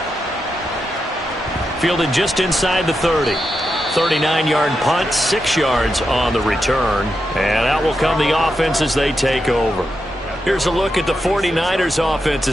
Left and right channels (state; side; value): normal; both; correlation 0.86